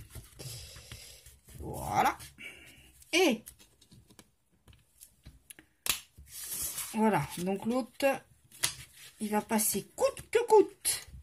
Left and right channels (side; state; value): both; identical; correlation 1.00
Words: Voilà. Et voilà. Donc, l'autre, il va passer coûte que coûte